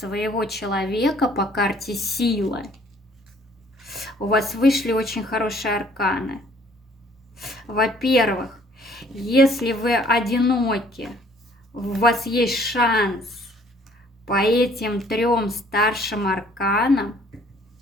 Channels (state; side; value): normal; both; correlation 0.59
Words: человека по карте сила. У вас вышли очень хорошие арканы. Во-первых, если вы одиноки, у вас есть шанс по этим 3 старшим арканам